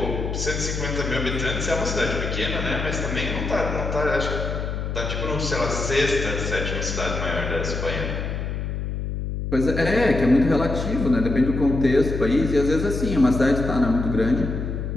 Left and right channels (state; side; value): noise; left; hum, 3 dB below the sound